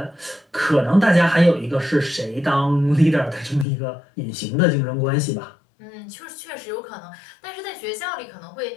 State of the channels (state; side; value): drops out; right; at 3.7 s